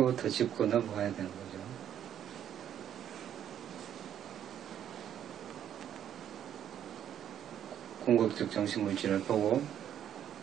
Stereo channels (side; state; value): left; quieter; 10.0 dB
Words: 짚고 넘어가야 되는 거죠. 궁극적 정신물질을 보고,